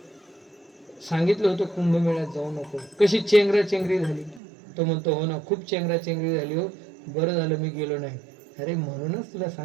सांगितलं होतं कुंभमेळ्यात जाऊ नको, कशी चेंगराचेंगरी झाली. तो म्हणतो हो ना, खूप चेंगराचेंगरी झाली हो, बरं झालं मी गेलो नाही. अरे म्हणूनच तुला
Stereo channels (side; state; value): left; drops out; at 4.4 s